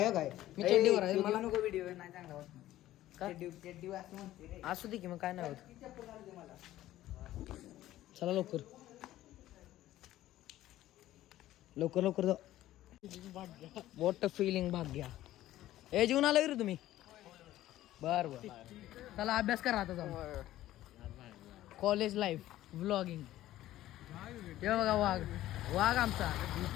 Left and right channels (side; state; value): right; quieter; 14.4 dB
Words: मी चड्डीवर आहे. मला नको व्हिडिओ नाही चांगला होत. का? चड्डी असं म्हणते रे. असू दे की, मग काय नाही होत. चला लवकर लवकर लवकर जाऊ. वॉट फिलिंग भाग्या. हे जेवून आला रे तुम्ही? बर बर, चला अभ्यास करा आता जाऊ. College life vlogging. हे बघा वाघ, वाघ आमचा